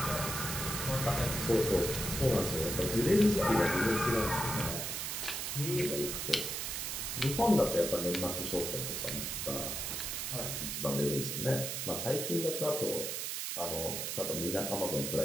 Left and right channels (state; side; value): noise; right; hiss, 3 dB below the sound